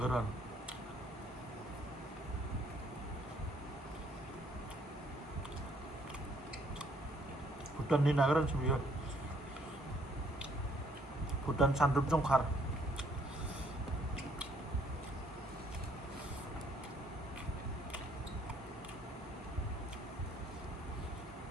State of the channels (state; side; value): normal; both; correlation 0.66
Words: भुटाननि ना गोरानसो बियो भुटान सानद्रुप जंखार